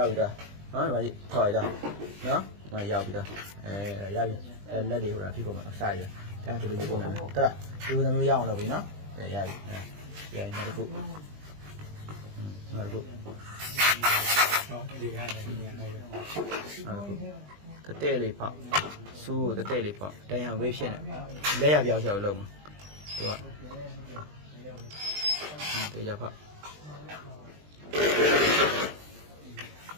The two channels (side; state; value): left; late; 20 ms